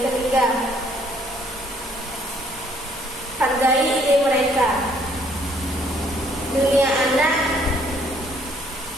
ketiga, hargai ide mereka. Dunia anak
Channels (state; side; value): normal; both; correlation 0.64